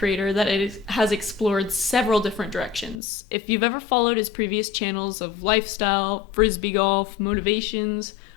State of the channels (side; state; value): right; drops out; at 3.0 s